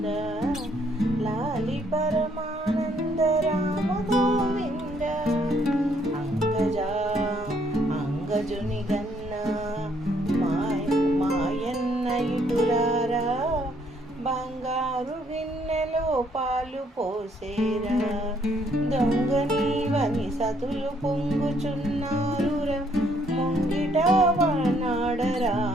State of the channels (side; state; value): both; normal; correlation 0.68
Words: లాలి పరమానంద రామ గోవింద. అంగజుని గన్న మాయన్న ఇటురారా బంగారు గిన్నెలో పాలు పోసేరా దొంగ నీవని సతులు పొంగుచున్నారురా ముంగిట వనాడరా